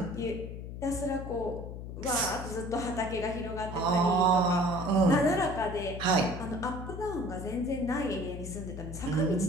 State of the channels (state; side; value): noise; left; hum, 8 dB below the sound